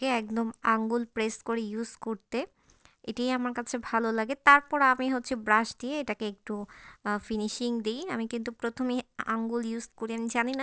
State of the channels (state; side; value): identical; both; correlation 1.00